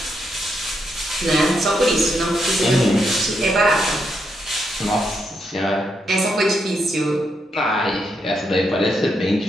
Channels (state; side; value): normal; both; correlation 0.80